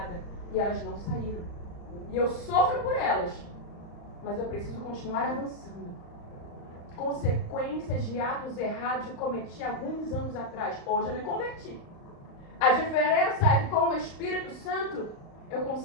E elas não saíram. E eu sofro por elas. Mas eu preciso continuar avançando. Consequências de atos errados que eu cometi alguns anos atrás. Hoje eu me converti. A diferença é que com o Espírito Santo eu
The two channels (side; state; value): right; late; 35 ms